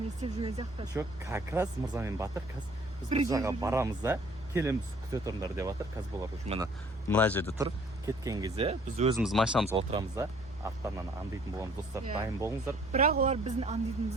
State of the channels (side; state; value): both; normal; correlation 0.57